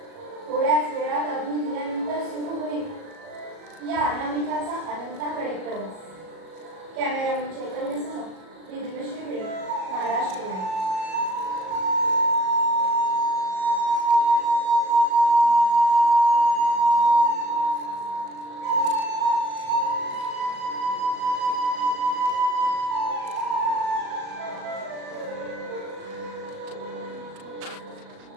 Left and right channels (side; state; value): left; late; 37 ms